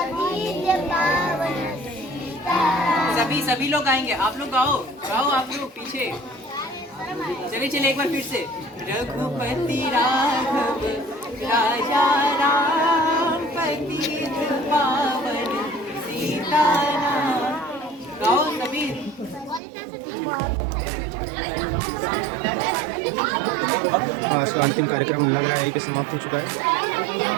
पावन सीता। सभी लोग गाएंगे, आप लोग गाओ गाओ, आप लोग पीछे। चलिए चलिए एक बार फिर से। रघुपति राघव राजा राम पतित पावन सीता नाम। गाओ सभी। आज का अंतिम कार्यक्रम लग रहा है यहीं पे समाप्त हो चुका है।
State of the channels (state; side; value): drops out; left; at 19.6 s